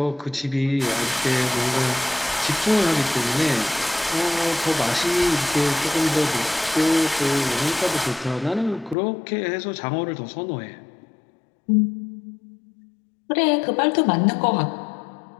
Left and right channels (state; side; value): drops out; right; at 9.0 s